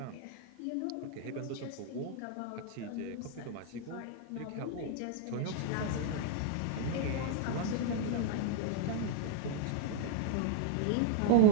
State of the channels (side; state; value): both; different; correlation -0.01